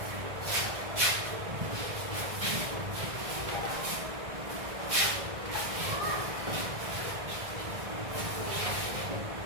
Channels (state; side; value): late; left; 1.6 ms